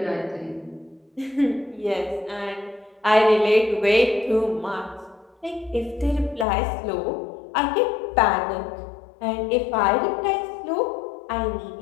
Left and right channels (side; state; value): right; drops out; at 6.5 s